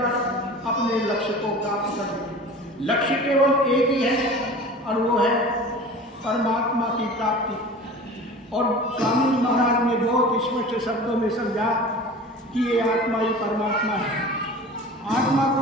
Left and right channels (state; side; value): normal; both; correlation 0.39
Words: अपने लक्ष्य को प्राप्त करें। लक्ष्य केवल एक ही है और वो है परमात्मा की प्राप्ति। और स्वामी महाराज ने बहुत स्पष्ट शब्दों में समझा कि ये आत्मा ही परमात्मा है। आत्मा